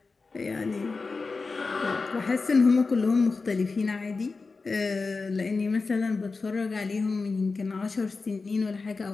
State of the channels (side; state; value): right; quieter; 4.1 dB